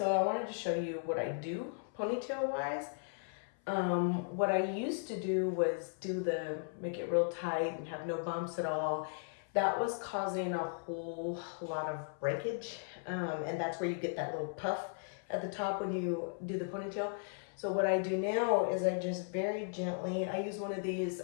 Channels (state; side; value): silent; right; 53 dB below the other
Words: I wanted to show you what I do ponytail wise. What I used to do was make it real tight and have no bumps at all. That was causing a whole lot of breakage. And that's where you get that little puff at the top when you do the ponytail. So what I do now is I just very gently, I use one of these